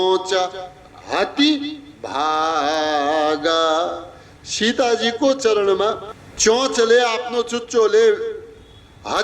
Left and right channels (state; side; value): identical; both; correlation 1.00